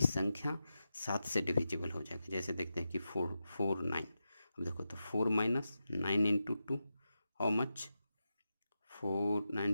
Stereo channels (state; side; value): inverted; both; correlation -0.90